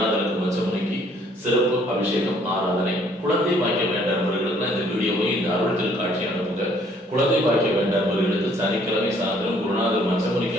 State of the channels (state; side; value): normal; both; correlation 0.62